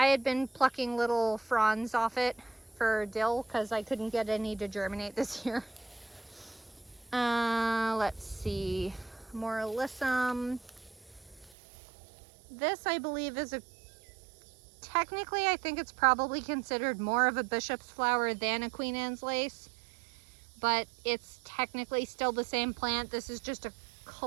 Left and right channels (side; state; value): left; drops out; at 11.5 s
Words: had been plucking little fronds off it for dill because I couldn't get any to germinate this year. Let's see, more alyssum. This, I believe, is technically, I think it's probably considered more of a bishop's flower than a Queen Anne's lace. but it's technically still the same plant. This is just a